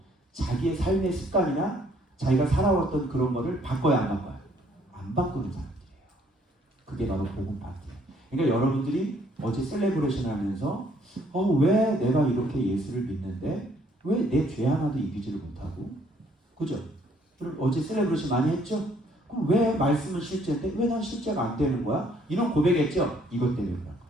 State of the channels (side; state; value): both; normal; correlation 0.64